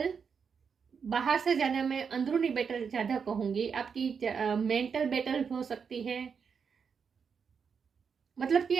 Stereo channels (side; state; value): left; quieter; 6.3 dB